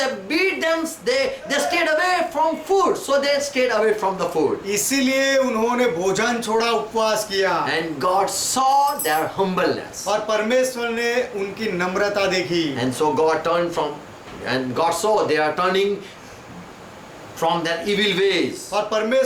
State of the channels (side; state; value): both; identical; correlation 1.00